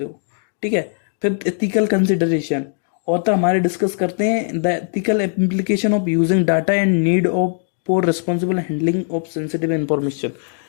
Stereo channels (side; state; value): right; silent; 66 dB below the other